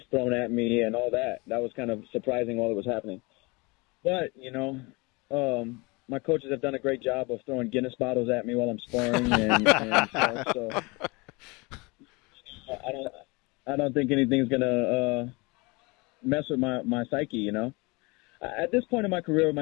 thrown at me and all that. That was kind of surprising while it was happening. But, you know, my coaches have done a great job of throwing Guinness bottles at me while I'm sparring and stuff. So I don't think anything's going to mess with my psyche, you know. At this point in my career,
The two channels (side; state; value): right; quieter; 26.7 dB